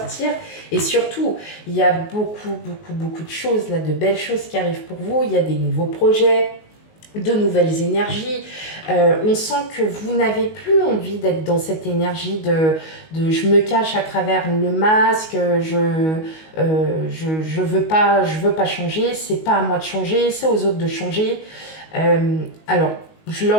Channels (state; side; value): late; right; 19 ms